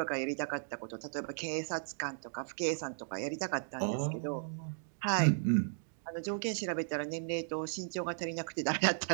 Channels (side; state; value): left; silent; digital silence